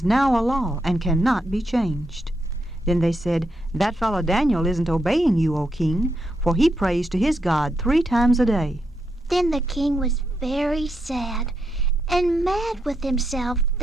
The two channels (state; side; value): normal; both; correlation 0.82